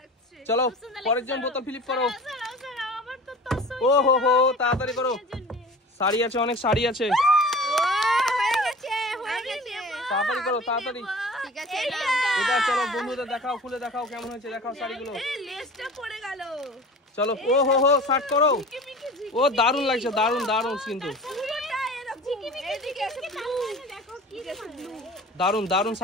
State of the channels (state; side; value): normal; both; correlation 0.40